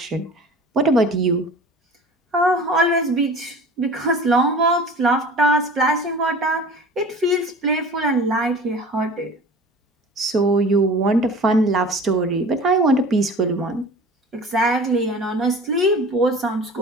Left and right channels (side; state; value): both; normal; correlation 0.40